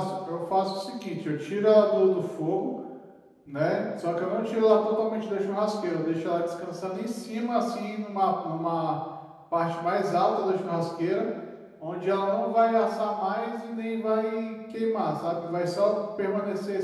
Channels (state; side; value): identical; both; correlation 1.00